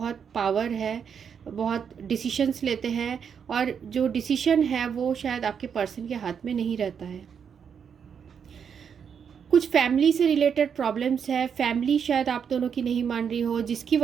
पावर है, बहुत डिसीशंस लेते हैं, और जो डिसीशन है वो शायद आपके पर्सन के हाथ में नहीं रहता है। कुछ फैमिली से रिलेटेड प्रॉब्लम्स है, फैमिली शायद आप दोनों की नहीं मान रही हो, जिसकी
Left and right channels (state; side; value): quieter; left; 7.2 dB